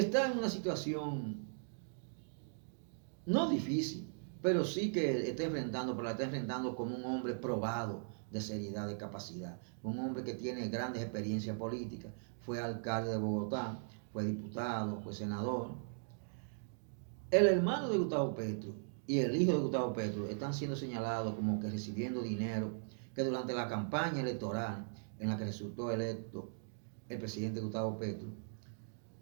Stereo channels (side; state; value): left; silent; digital silence